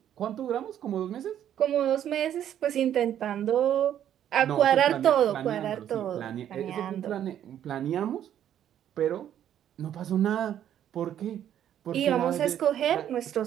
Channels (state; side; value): quieter; left; 10.5 dB